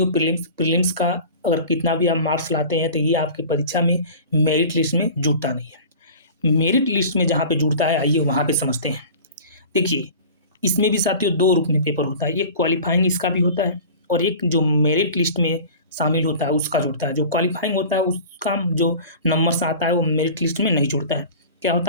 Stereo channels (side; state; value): both; inverted; correlation -0.39